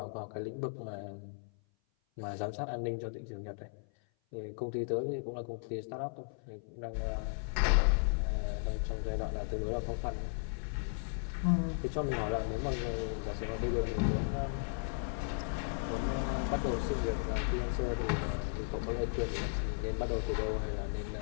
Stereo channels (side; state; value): right; silent; 54 dB below the other